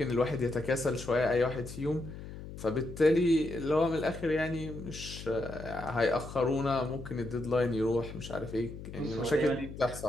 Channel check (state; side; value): noise; left; hum, 12 dB below the sound